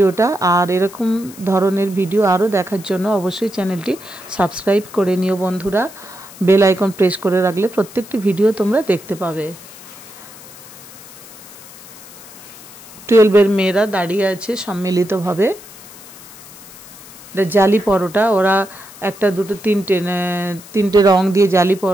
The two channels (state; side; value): noise; left; hiss, 19 dB below the sound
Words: আর এরকম ধরনের ভিডিও আরও দেখার জন্য অবশ্যই চ্যানেলটি সাবস্ক্রাইব করে নিও বন্ধুরা। বেল আইকন প্রেস করে রাখলে প্রত্যেকটি ভিডিও তোমরা দেখতে পাবে। 12 এর মেয়েরা দাঁড়িয়ে আছে সম্মিলিতভাবে। জালি পরোটা, ওরা 1, 2, 3টে রং দিয়ে জালি